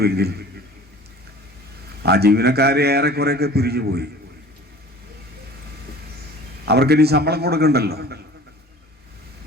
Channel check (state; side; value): normal; both; correlation 0.44